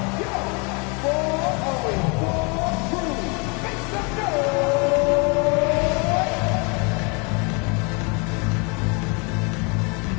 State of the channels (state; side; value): quieter; right; 32.1 dB